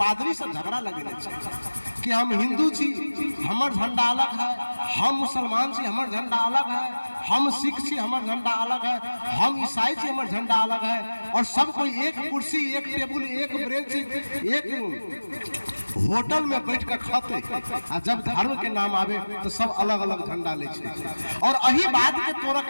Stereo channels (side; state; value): both; inverted; correlation -1.00